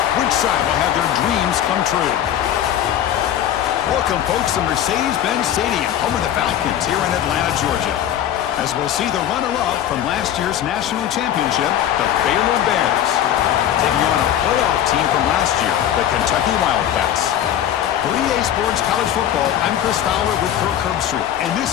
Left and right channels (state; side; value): quieter; right; 10.9 dB